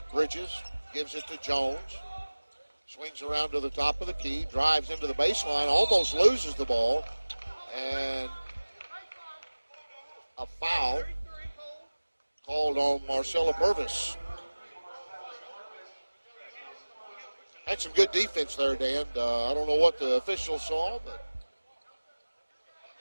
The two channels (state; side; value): inverted; both; correlation -1.00